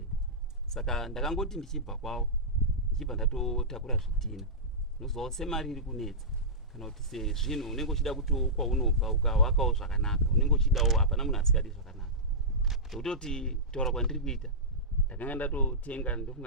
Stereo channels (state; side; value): normal; both; correlation -0.15